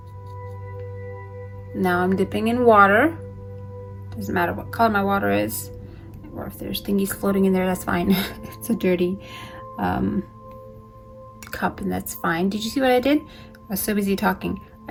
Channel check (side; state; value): both; identical; correlation 1.00